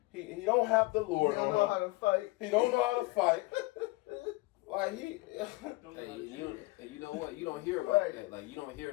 He don't have the Lord on him. He don't know how to fight. He don't know how to fight. Like he. Hey, you know what? You don't hear about that. Like you don't hear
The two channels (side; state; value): right; quieter; 22.6 dB